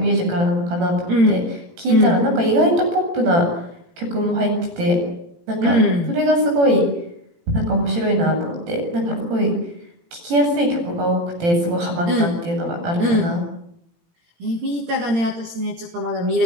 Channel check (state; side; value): late; left; 18 ms